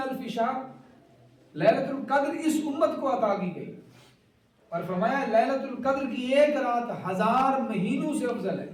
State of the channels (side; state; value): both; identical; correlation 1.00